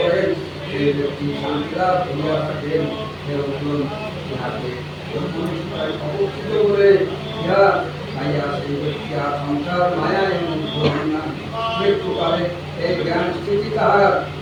সেই ব্যক্তি শান্তি লাভ করিয়া থাকেন। অবস্থিত বলে ইহা খাইয়া সেই ব্যক্তি আর সংসার মায়ায় মুগ্ধ হন না। মৃত্যুকালে এই জ্ঞান স্থিতি তাহার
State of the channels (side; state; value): both; identical; correlation 1.00